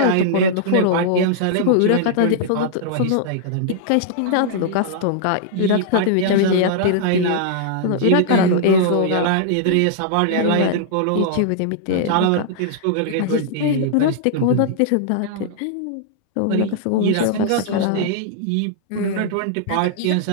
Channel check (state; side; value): different; both; correlation -0.01